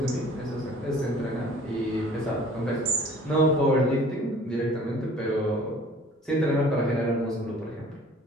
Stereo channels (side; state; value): both; normal; correlation 0.50